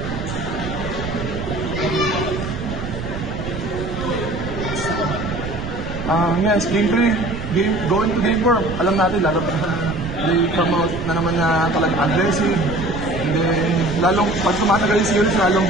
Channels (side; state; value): right; noise; rumble, 8 dB below the sound